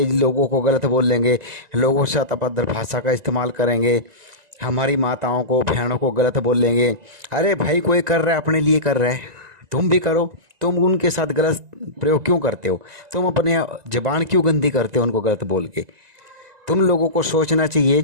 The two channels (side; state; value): left; late; 1.9 ms